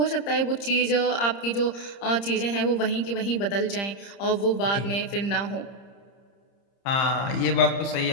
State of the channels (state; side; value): late; right; 30 ms